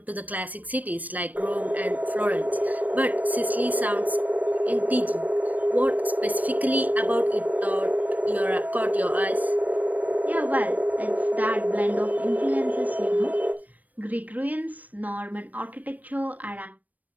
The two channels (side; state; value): left; late; 0.078 ms